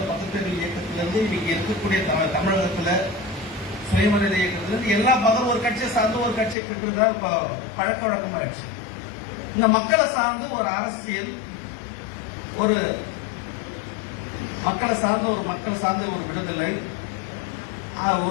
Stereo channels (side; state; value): right; drops out; at 6.6 s